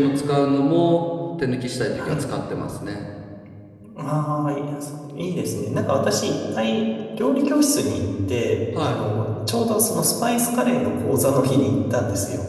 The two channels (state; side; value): identical; both; correlation 1.00